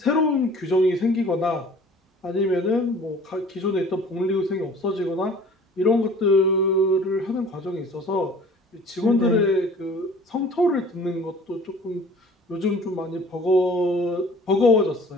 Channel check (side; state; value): both; normal; correlation 0.48